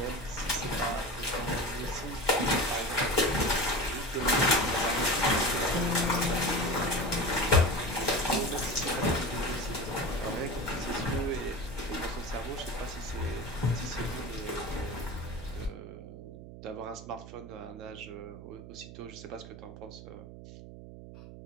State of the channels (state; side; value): noise; right; hum, 14 dB below the sound